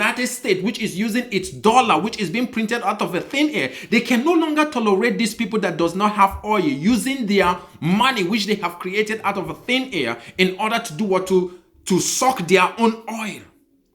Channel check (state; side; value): identical; both; correlation 1.00